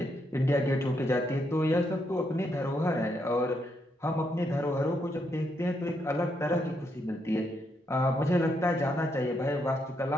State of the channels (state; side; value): normal; both; correlation 0.78